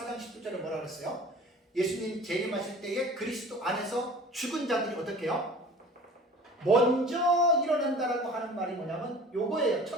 4장 10절에 뭐라 그랬어요? 예수님 재림하실 때에 그리스도 안에서 죽은 자들이 어떻게 해요? 먼저 일어난다라고 하는 말이 뭐냐면 요거예요.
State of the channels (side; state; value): both; normal; correlation 0.44